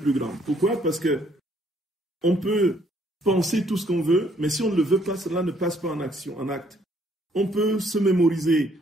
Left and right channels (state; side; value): normal; both; correlation 0.66